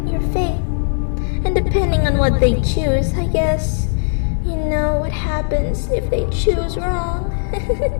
your fate. And depending on what they choose, I guess, you know what happens if they choose wrong.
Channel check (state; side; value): silent; right; 61 dB below the other